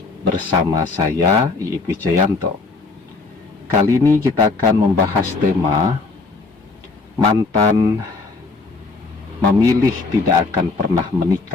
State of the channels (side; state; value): right; quieter; 3.9 dB